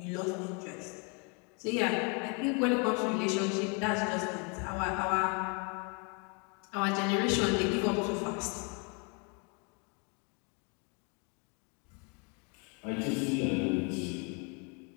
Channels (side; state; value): right; quieter; 34.3 dB